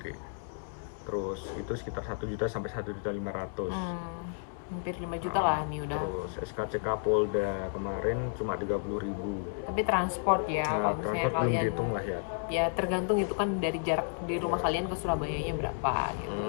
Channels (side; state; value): right; silent; digital silence